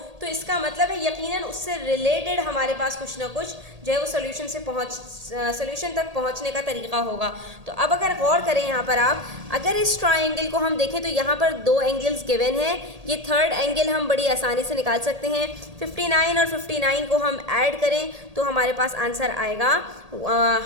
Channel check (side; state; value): left; late; 1.8 ms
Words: तो इसका मतलब है यकीनन उससे रिलेटेड हमारे पास कुछ ना कुछ जो है वो सोल्यूशन तक पहुंचने का तरीका होगा। तो अब अगर गौर करें यहाँ पर आप, अगर इस ट्रायंगल को हम देखें तो यहाँ पर दो एंगल्स गिवन है, ये थर्ड एंगल हम बड़ी आसानी से निकाल सकते हैं। 59 और 59 को हम ऐड करें तो हमारे पास आंसर आएगा